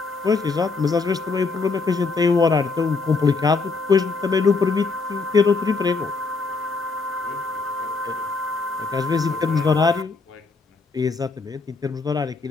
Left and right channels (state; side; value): quieter; right; 4.2 dB